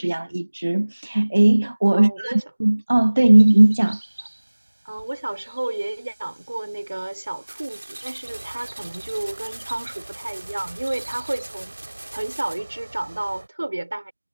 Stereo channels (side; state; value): both; inverted; correlation -1.00